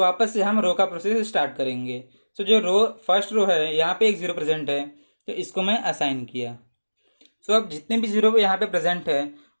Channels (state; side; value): inverted; both; correlation -1.00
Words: से हम रो का प्रोसेस स्टार्ट करेंगे। तो जो रो फर्स्ट रो है यहाँ पे 1 जीरो प्रेजेंट है, तो इसको मैं असाइन किया। सो अब जितने भी जीरो यहाँ पे प्रेजेंट है